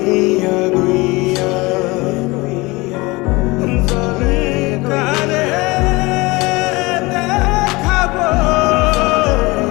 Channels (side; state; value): right; quieter; 23.3 dB